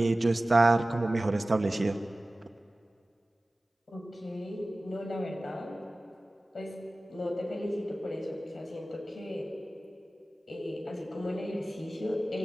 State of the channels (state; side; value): normal; both; correlation 0.97